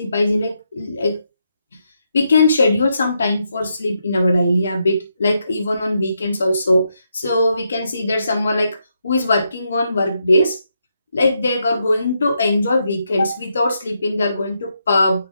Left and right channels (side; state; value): both; inverted; correlation -0.81